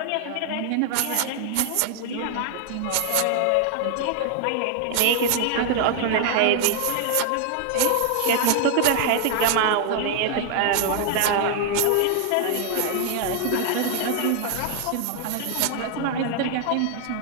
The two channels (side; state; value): both; different; correlation 0.00